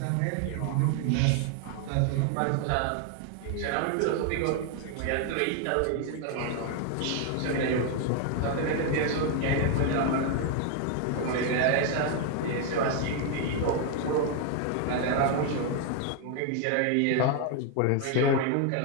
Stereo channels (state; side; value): different; both; correlation 0.00